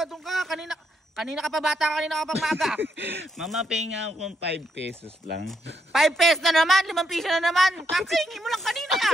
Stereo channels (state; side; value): normal; both; correlation 0.76